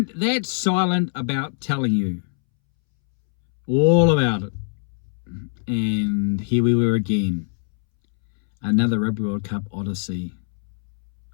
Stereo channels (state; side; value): silent; right; 64 dB below the other